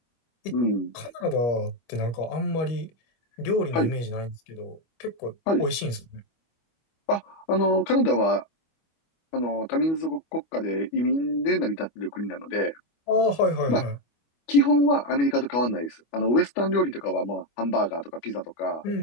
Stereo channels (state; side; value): late; right; 25 ms